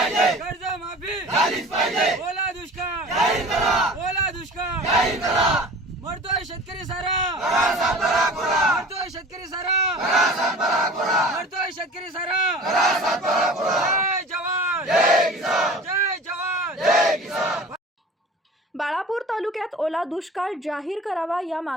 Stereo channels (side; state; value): both; normal; correlation 0.41